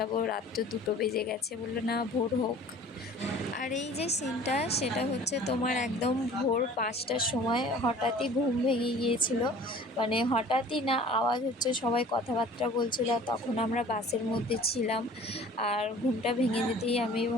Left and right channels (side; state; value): both; normal; correlation 0.47